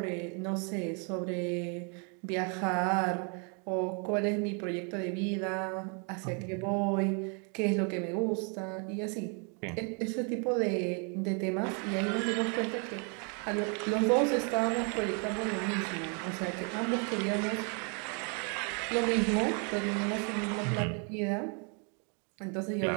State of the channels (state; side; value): quieter; left; 37.3 dB